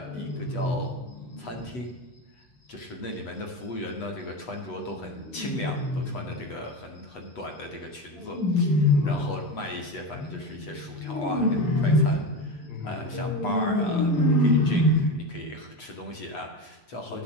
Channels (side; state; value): right; late; 8.1 ms